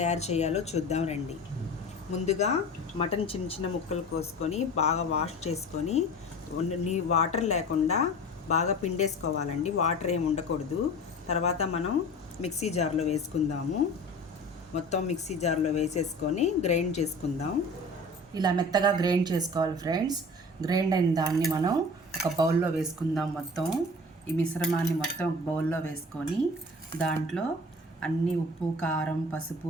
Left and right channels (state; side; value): normal; both; correlation 0.39